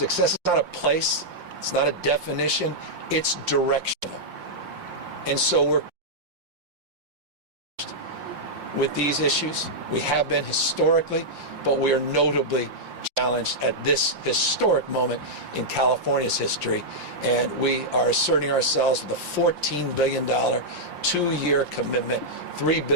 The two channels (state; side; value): late; left; 5.7 ms